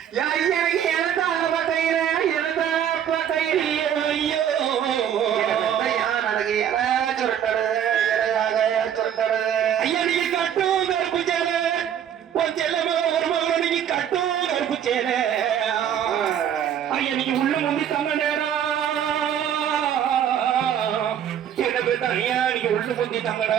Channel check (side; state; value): left; quieter; 9.5 dB